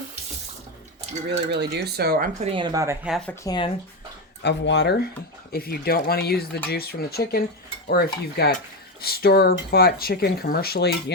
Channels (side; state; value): both; normal; correlation 0.12